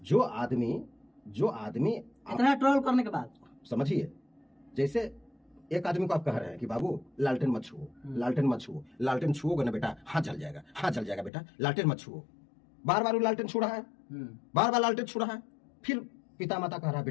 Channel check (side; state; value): right; drops out; at 11.3 s